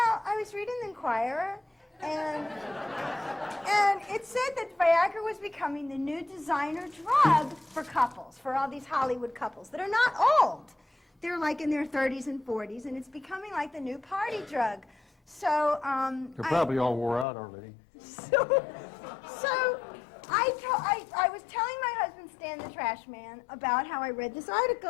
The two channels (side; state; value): right; drops out; at 17.2 s